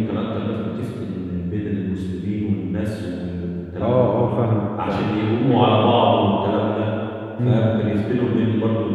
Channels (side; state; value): both; identical; correlation 1.00